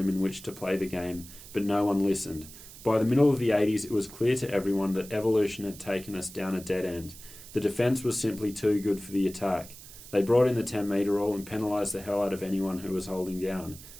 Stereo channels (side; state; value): right; noise; hiss, 17 dB below the sound